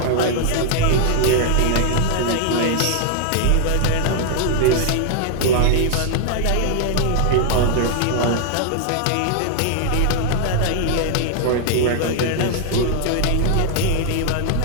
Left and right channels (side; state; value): both; different; correlation 0.00